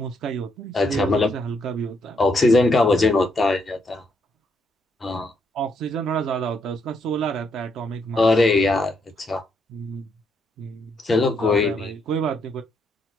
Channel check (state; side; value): normal; both; correlation 0.75